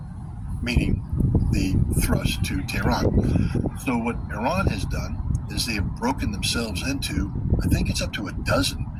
meaning the thrust to Tehran. So what Iran has done is they have broken themselves into, I think it's up to a dozen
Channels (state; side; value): identical; both; correlation 1.00